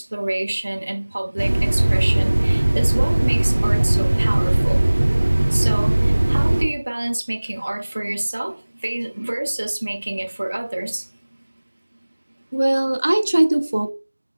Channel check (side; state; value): both; inverted; correlation -1.00